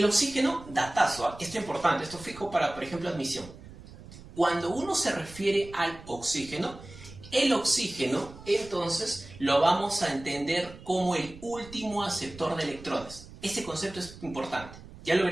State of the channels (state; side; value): noise; right; rumble, 17 dB below the sound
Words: oxígeno, datazo, ¿eh? Esto es importante, esto fijo para, por ejemplo, admisión. Cuando uno se refiere al oxígeno, el oxígeno, entonces, lo vamos a entender como el último aceptor de electrones. Ese concepto es importante. Ya lo